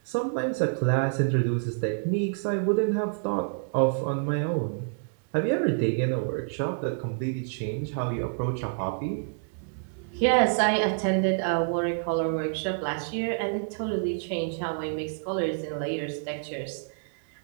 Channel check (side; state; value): left; silent; 59 dB below the other